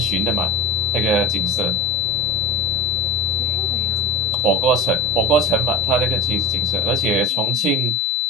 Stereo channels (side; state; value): both; normal; correlation 0.31